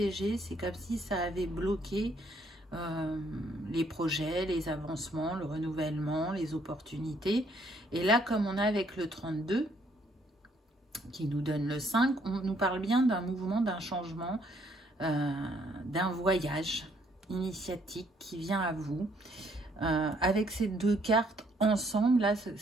c'est comme si ça avait bloqué les projets, les avancements, le renouvellement, les opportunités. Et là, comme on a avec le 32, qui nous donne le 5, on nous parle bien d'un mouvement, d'un changement, d'un voyage initiatique qui vient à vous. Avec ces deux cartes ensemble, là,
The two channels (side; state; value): both; normal; correlation 0.68